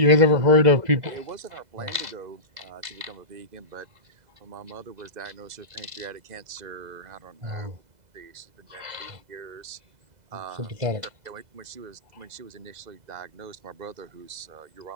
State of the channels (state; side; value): late; left; 2.0 ms